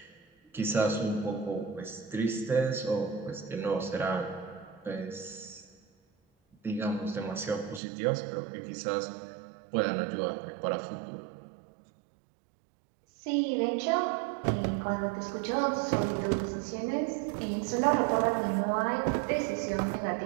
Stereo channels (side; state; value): left; drops out; at 7.8 s